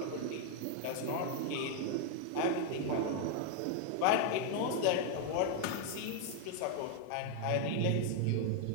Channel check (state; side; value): different; both; correlation 0.00